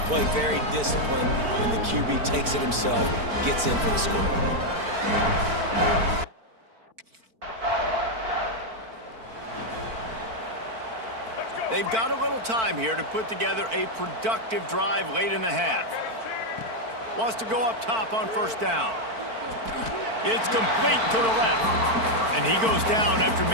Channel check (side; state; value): left; late; 4.5 ms